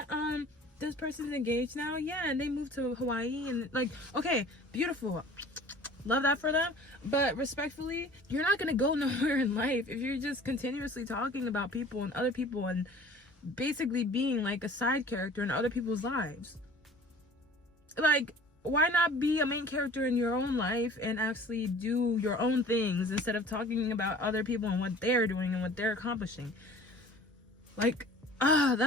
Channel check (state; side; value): normal; both; correlation 0.47